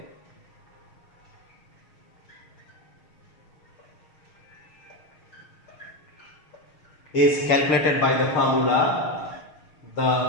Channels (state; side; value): late; right; 6.5 ms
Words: is calculated by the formula, the